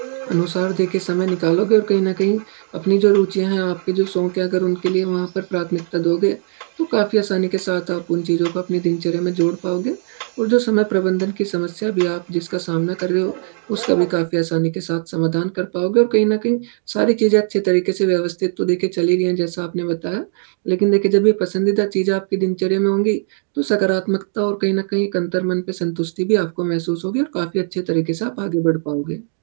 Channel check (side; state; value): left; silent; digital silence